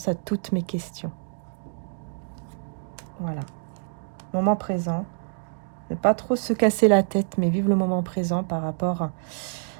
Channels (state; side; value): silent; left; digital silence